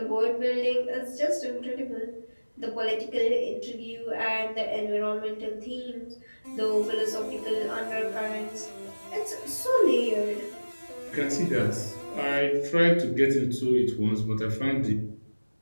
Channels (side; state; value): both; inverted; correlation -1.00